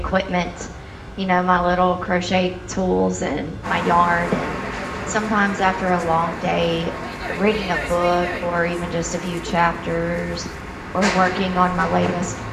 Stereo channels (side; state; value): both; identical; correlation 1.00